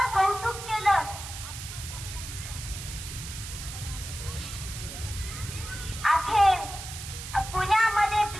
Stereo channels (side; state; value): right; noise; hiss, 10 dB below the sound